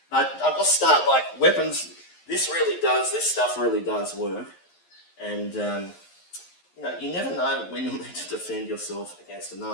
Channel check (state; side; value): late; right; 11 ms